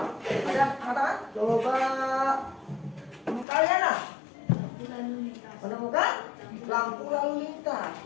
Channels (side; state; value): right; drops out; at 3.5 s